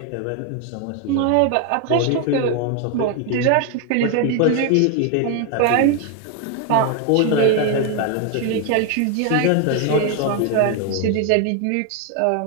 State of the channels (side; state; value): both; different; correlation 0.01